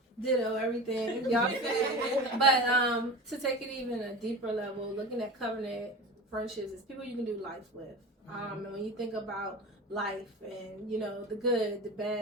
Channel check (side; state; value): both; normal; correlation 0.31